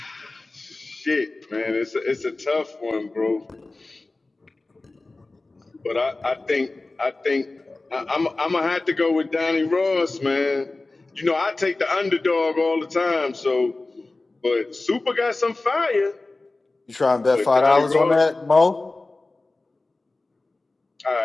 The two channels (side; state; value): right; quieter; 3.2 dB